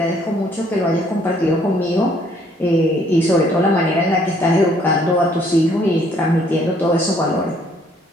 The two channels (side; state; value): both; normal; correlation 0.64